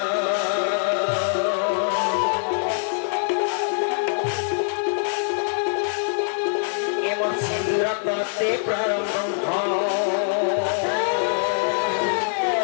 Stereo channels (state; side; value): silent; right; digital silence